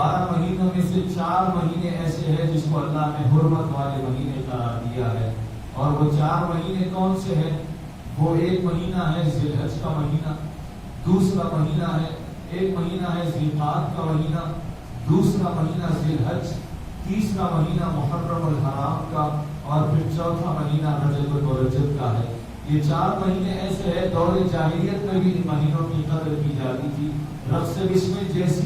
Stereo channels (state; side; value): identical; both; correlation 1.00